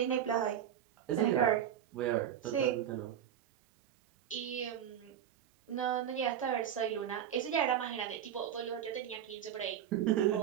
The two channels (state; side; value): quieter; left; 9.7 dB